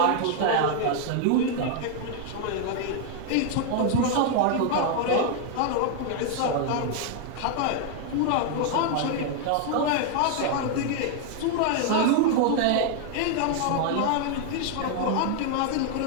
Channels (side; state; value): both; different; correlation 0.00